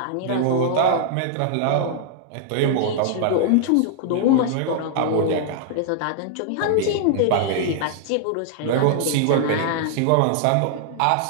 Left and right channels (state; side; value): different; both; correlation -0.01